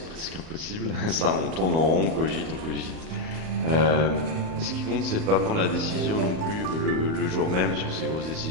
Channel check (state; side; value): late; left; 38 ms